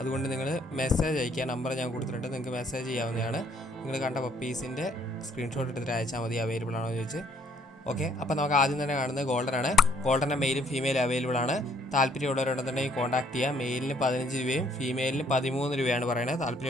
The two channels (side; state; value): both; normal; correlation 0.64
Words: നിങ്ങൾ മെസ്സേജ് അയക്കുക. നമ്പർ ഞാൻ കൊടുത്തിട്ടുണ്ട്, നിങ്ങൾക്ക് മെസ്സേജ് ചെയ്യാവുന്നതാണ്. നിങ്ങൾ കണ്ട പപ്പീസിൻ്റെ സ്ക്രീൻഷോട്ട് എടുത്തിട്ട് അയച്ചാൽ മതി, അവൈലബിൾ ആണോ എന്ന് ചോദിച്ച്. ഓക്കെ, അപ്പോൾ നമുക്ക് ആദ്യം തന്നെ കാണുന്നത് ഗോൾഡനാണ്. ഗോൾഡൻ്റെ മെയിലും ഫീമെയിലും അവൈലബിൾ ആണ്. താല്പര്യമുള്ളവരുണ്ടെന്നുണ്ടെങ്കിൽ കോൺടാക്ട് ചെയ്യുക. മെയിലിന് 15 രൂപയും ഫീമെയിലിന് 13 രൂപയാണ് പറയുന്നത്.